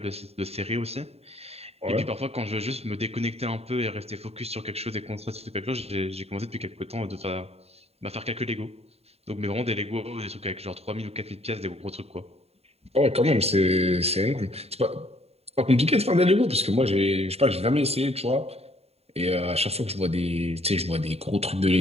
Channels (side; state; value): left; late; 0.30 ms